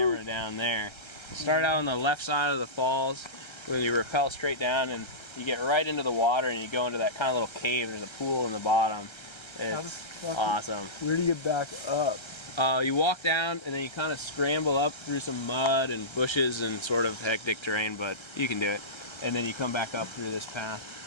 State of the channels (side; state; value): right; late; 1.3 ms